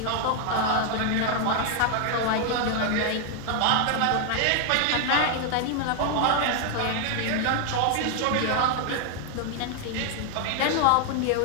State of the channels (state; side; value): different; both; correlation 0.00